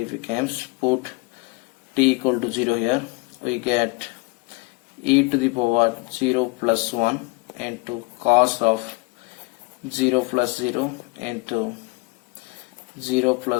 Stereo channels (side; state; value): right; quieter; 27.4 dB